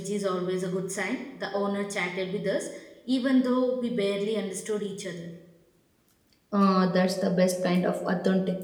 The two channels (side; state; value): both; identical; correlation 1.00